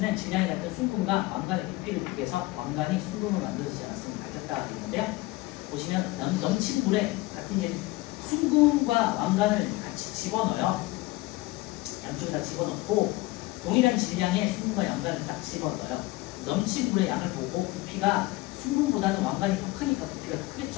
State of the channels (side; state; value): right; quieter; 20.1 dB